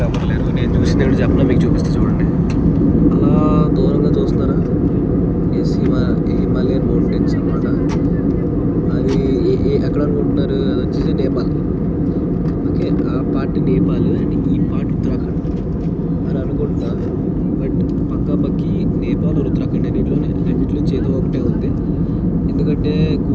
ఎవరు లేరు. నేను చూసింది ఏంటో చెప్పినా మీకు చూపిస్తే చూడండి. అలా దూరంగా చూస్తున్నారా, హిమాలయన్ మౌంటైన్స్ అనమాట. అది ఎక్కడ అనుకుంటున్నారు, అది వచ్చేసి నేపాల్. ఓకే, ఆ పార్ట్ నేపాల్ అండ్ ఈ పార్ట్ ఉత్తరాఖండ్ అని అనుకుంటా. బట్ పక్కాపక్కి నేపాల్ ఉత్తరాఖండ్ రెండిట్లో నుంచి ఏదో ఒకటే ఉంది. ఎందుకంటే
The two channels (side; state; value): both; identical; correlation 1.00